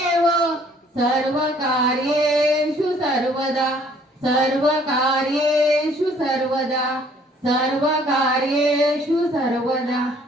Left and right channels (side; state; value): both; normal; correlation 0.60